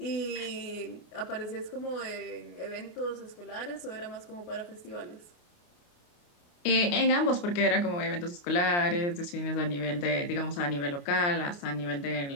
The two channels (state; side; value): late; right; 29 ms